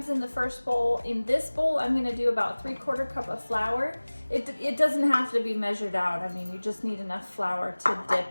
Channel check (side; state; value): both; inverted; correlation -1.00